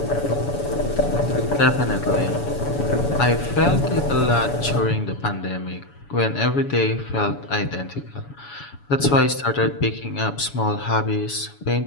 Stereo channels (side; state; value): right; late; 7.0 ms